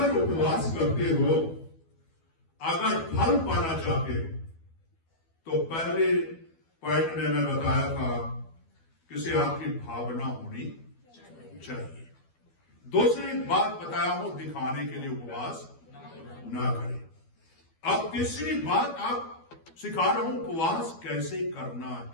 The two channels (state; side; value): late; right; 12 ms